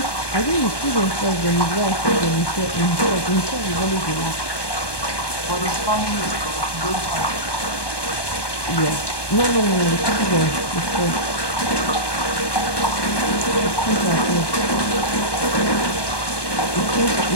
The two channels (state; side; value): late; right; 1.2 ms